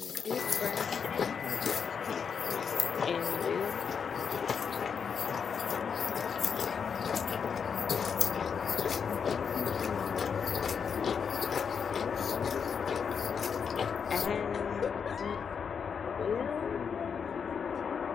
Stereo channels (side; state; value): right; quieter; 6.6 dB